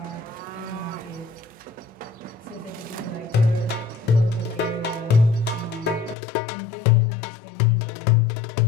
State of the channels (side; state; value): right; drops out; at 6.2 s